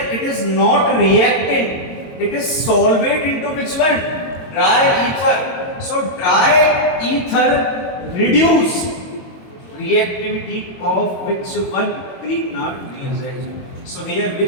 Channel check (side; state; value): right; late; 22 ms